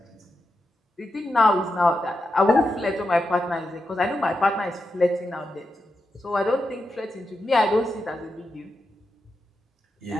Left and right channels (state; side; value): normal; both; correlation 0.87